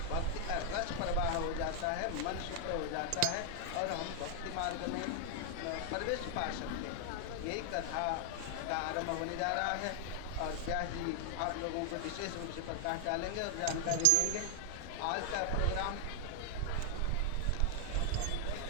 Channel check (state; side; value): different; both; correlation 0.00